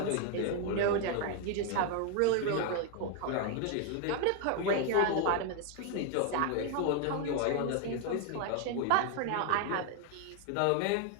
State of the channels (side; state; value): both; different; correlation 0.01